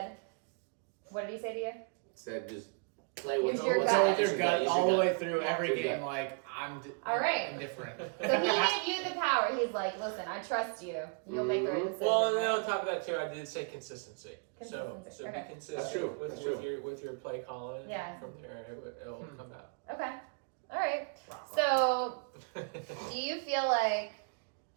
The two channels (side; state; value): left; quieter; 37.6 dB